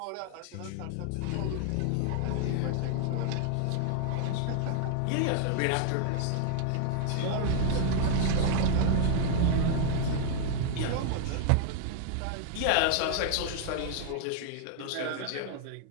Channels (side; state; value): both; different; correlation 0.00